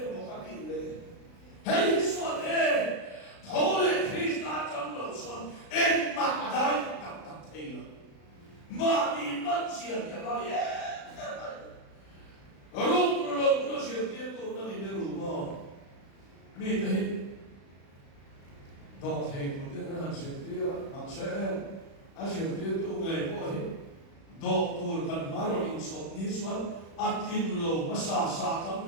bukan ini. Hei suat thole Krista janglo suat mak adai tak thela. Mani manusia dia bari. Rum sir dia tu nanti dia rumah. Mi tahi. Dot hei tu dia nak sir dia maksud asir dia tu ngai boleh. Dot tu kan maru insot ni suat akin lo masa tam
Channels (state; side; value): late; right; 36 ms